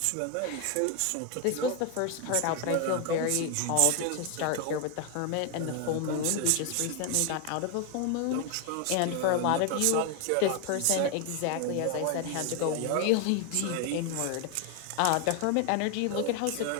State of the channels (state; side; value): different; both; correlation 0.01